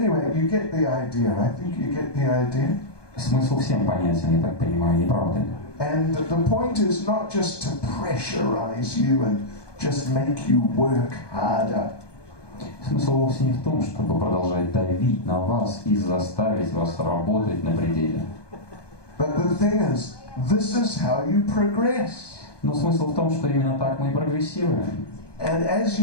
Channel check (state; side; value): late; right; 1.2 ms